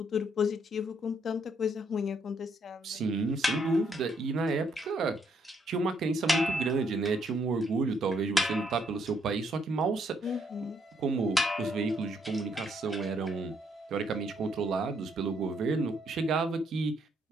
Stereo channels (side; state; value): both; normal; correlation 0.72